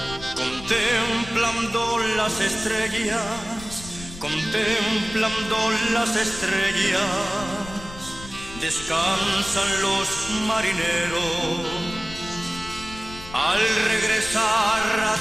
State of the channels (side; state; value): left; noise; rumble, 14 dB below the sound